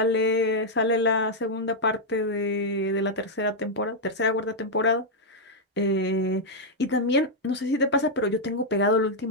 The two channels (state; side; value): normal; both; correlation -0.03